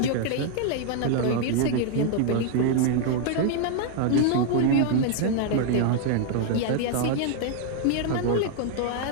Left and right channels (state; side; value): different; both; correlation 0.00